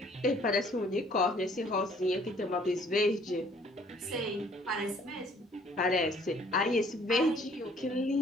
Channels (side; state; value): both; normal; correlation 0.59